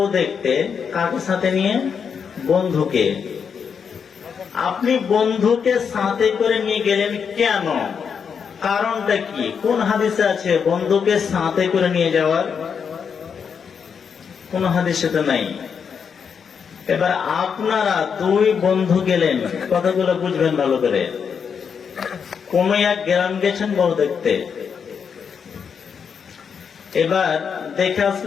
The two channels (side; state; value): right; quieter; 6.6 dB